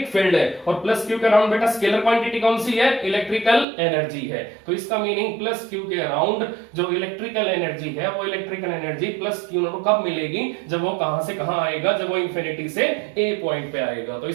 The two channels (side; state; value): left; drops out; at 3.7 s